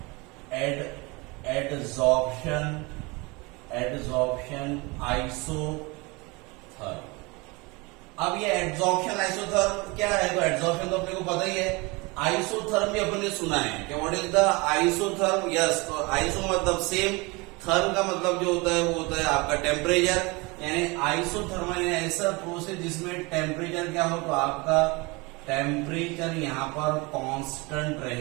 Adsorption isotherm. अब ये एड्सॉर्प्शन आइसोथर्म क्या है? तो एड्सॉर्प्शन तो अपने को पता ही है, आइसोथर्म भी अपन ने सुना है कि what is the isotherm. Yes, तो आइसो मतलब सेम, थर्म का मतलब जो होता है वो होता है आपका टेम्परेचर, यानी आइसोथर्मल ऐसा प्रोसेस जिसमें टेम्परेचर क्या हो, तो आपका टेम्परेचर यहाँ पर कांस्टेंट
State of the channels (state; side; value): quieter; left; 26.1 dB